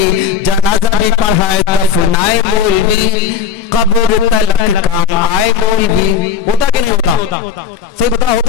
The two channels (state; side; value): quieter; right; 7.3 dB